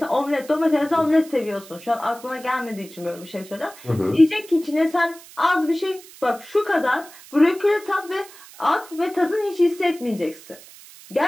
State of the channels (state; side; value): noise; right; hiss, 20 dB below the sound